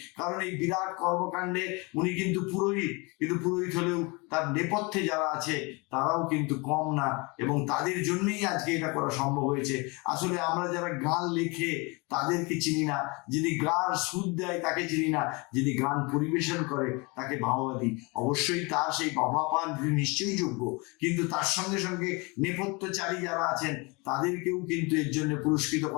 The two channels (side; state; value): right; quieter; 27.9 dB